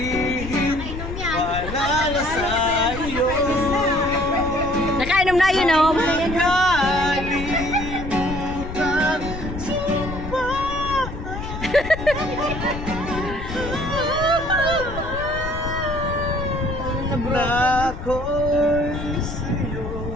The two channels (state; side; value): noise; left; rumble, 8 dB below the sound